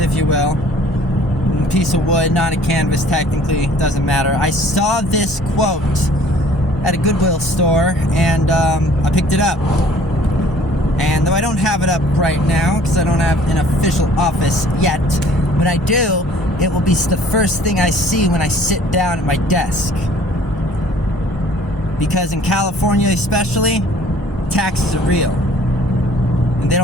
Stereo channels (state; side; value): normal; both; correlation 0.54